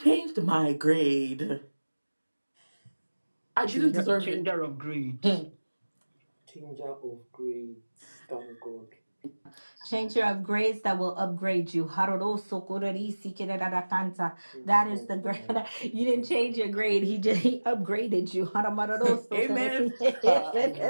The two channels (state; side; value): inverted; both; correlation -1.00